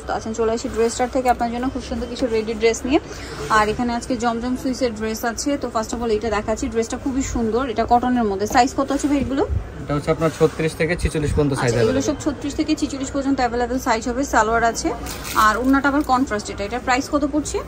আছেন। চলে আসি ড্রেস স্টার থেকে আপনার জন্য খুব সুন্দর কিছু রেডি ড্রেস নিয়ে। আর এখানে আজকে জমজম সুইসের ড্রেস আছে। তো ফার্স্ট অফ অল এটা দেখাচ্ছি। ড্রেসটা খুবই সুন্দর, এটা কটনের মধ্যে। সাইজ কত আছে ভাই এগুলো? এটা হচ্ছে আপনার 36 থেকে 46 পর্যন্ত সাইজ আছে। এগুলো সব 36 থেকে 46 পর্যন্ত अवेलेबल সাইজ হবে। সালোয়ার আছে আর ওন্নাটা আবার কন্ট্রাস্ট। এটার প্রাইস কত পড়ছে?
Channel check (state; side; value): identical; both; correlation 1.00